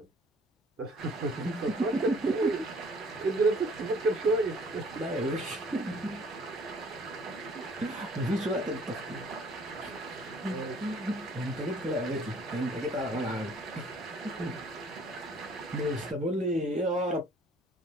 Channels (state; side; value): normal; both; correlation 0.56